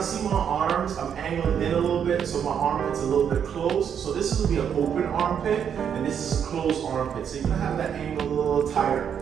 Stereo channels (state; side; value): quieter; left; 8.1 dB